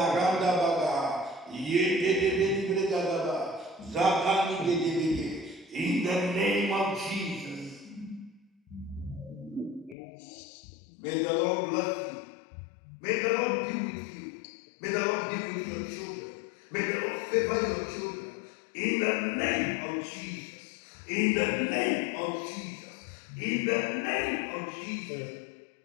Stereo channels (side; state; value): right; drops out; at 10.0 s